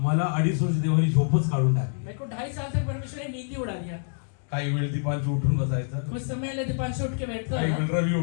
2.5 वर्ष देवानी झोपच काढून टाकली. मेरे को 2.5 साल तक परमेश्वर ने नींद ही उड़ा दिया. काही वेळ दीपांशी उठून बसायचं, कुछ समय दीपांशु उठ के बैठता काही था, वेळ रवी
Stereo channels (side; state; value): right; silent; digital silence